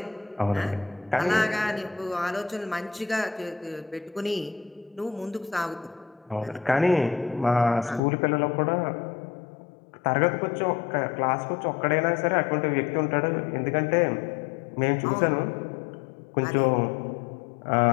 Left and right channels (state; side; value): drops out; right; at 8.0 s